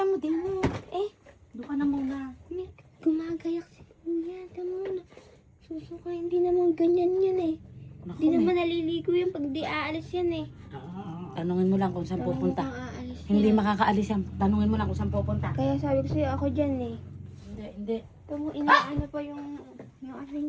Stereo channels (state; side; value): identical; both; correlation 1.00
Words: mo din Eh, doon ka na muna. me, gumagayak si kuya. Tama na. Susuka, hindi naman ganyan yan eh. Naku, Hindi naman naliligo yan pag di aalis yan eh. Tanungin mo lang kung saan pupunta. Mukhang aalis Hindi yan. makakaalis yan. Tanungin mo lang kung saan pupunta. Kaya sabi ko sa'yo, ako dyan eh. Hindi. Tamo, inaano pa yung ano